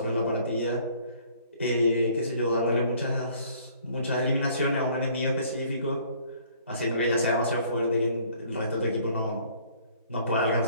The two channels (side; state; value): both; inverted; correlation -0.58